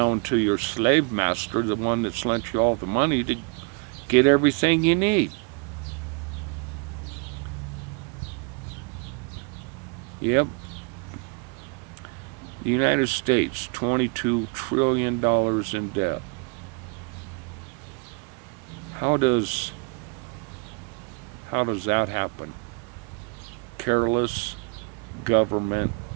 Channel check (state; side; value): quieter; left; 33.7 dB